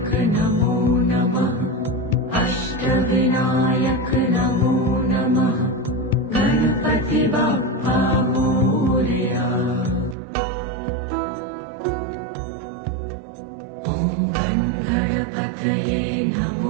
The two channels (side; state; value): left; drops out; at 10.2 s